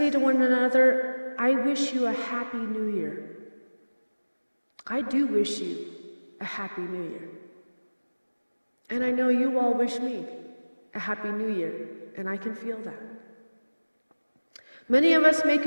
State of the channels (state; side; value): inverted; both; correlation -1.00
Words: to one another, I wish you a happy new year. I do wish you a happy new year. And I know you all wish me a happy new year, and I can feel that. Many of us